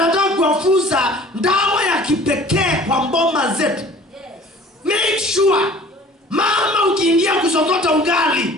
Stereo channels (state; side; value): normal; both; correlation 0.48